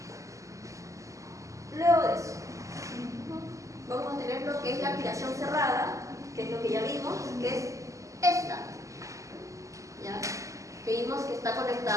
aspiración cerrada, que es lo que ya vimos, que es esta. ¿Ya? Que vimos que está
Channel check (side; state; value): left; late; 0.16 ms